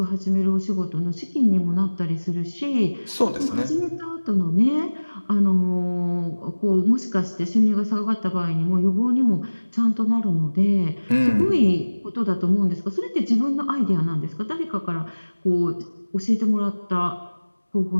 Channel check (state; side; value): inverted; both; correlation -1.00